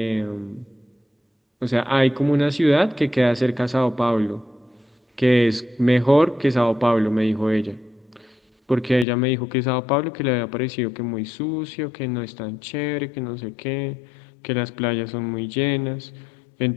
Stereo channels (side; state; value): right; drops out; at 9.1 s